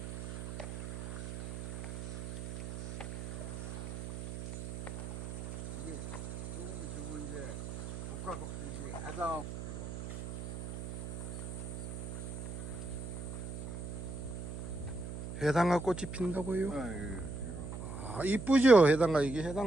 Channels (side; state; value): right; noise; hum, 6 dB below the sound